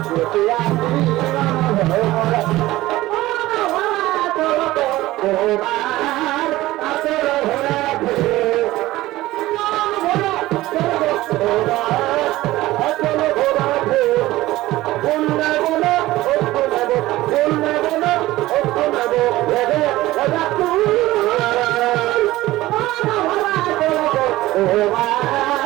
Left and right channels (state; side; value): quieter; left; 17.2 dB